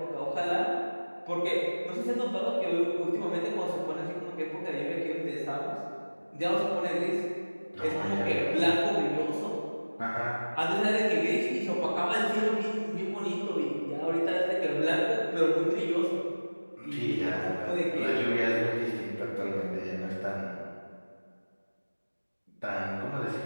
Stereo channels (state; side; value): inverted; both; correlation -1.00